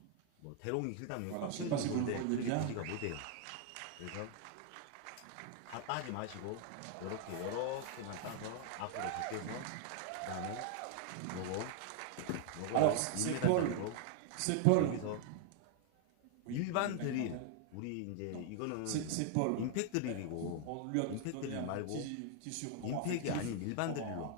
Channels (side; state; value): both; different; correlation 0.00